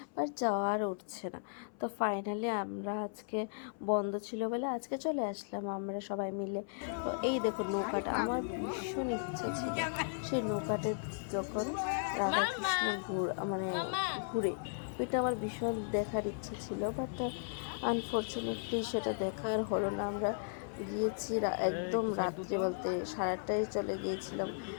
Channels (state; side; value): silent; right; 54 dB below the other